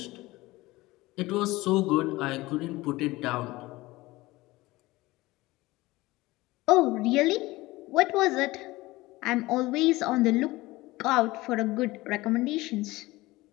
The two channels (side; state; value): right; quieter; 19.7 dB